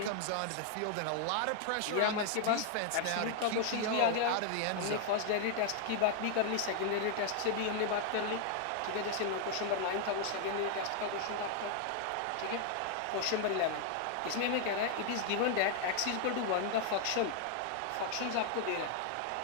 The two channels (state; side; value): different; both; correlation 0.00